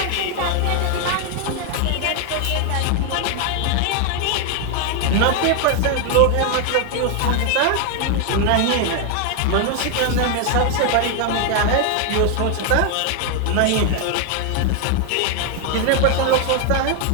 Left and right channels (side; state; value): both; different; correlation 0.00